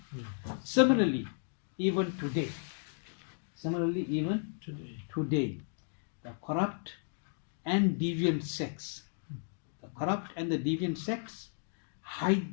Similarly, even today, the corrupt and deviant sects,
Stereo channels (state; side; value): silent; right; digital silence